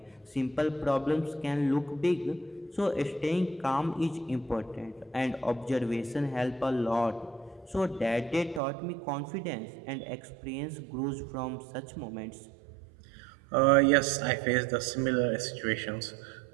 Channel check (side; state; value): left; drops out; at 8.6 s